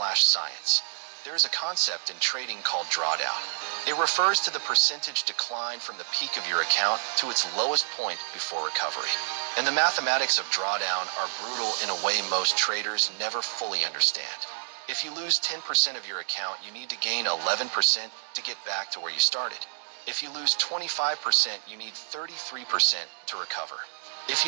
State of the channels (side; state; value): left; silent; digital silence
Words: There is a concept in trading called drawdown. It refers to the percentage decline from the peak of your account to its lowest point before recovery. And the mathematics of drawdown are brutal in a way most traders never fully understand. If you lose 10% of your account, you need to gain 11% to get back to where you started. If you lose 25%, you need 33% to recover. If